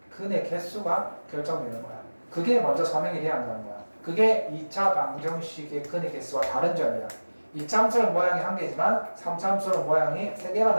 근의 개수가 결정되는 거야. 그게 먼저 설명이 돼야 한다는 거야. 그게 2차 방정식의 근의 개수와 다른 점이야. 2참수는 모양이 한 개지만 3참수는 모양이 세 개가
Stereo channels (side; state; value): both; inverted; correlation -1.00